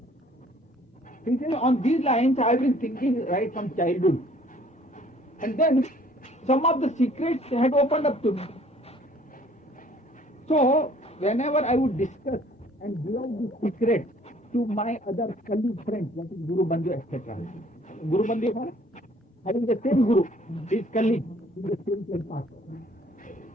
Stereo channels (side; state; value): both; normal; correlation 0.57